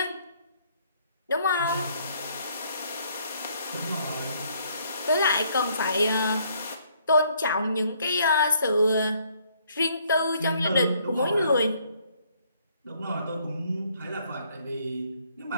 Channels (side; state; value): both; inverted; correlation -0.66